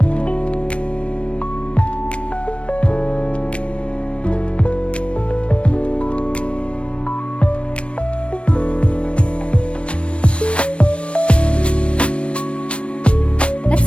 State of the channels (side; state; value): right; late; 0.060 ms